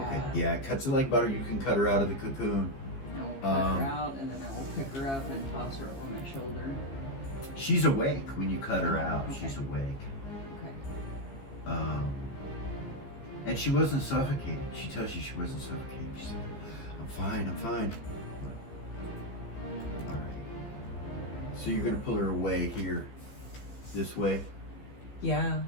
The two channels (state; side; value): late; right; 15 ms